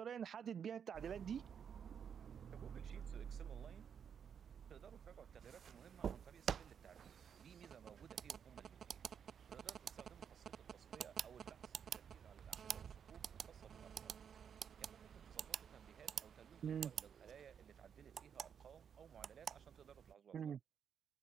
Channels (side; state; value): left; quieter; 7.7 dB